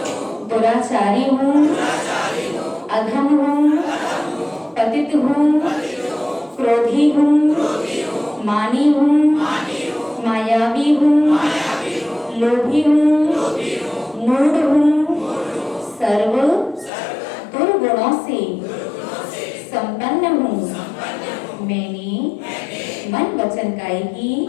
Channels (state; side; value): drops out; right; at 16.9 s